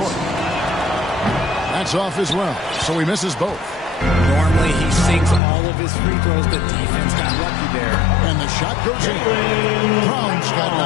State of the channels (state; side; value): drops out; right; at 5.4 s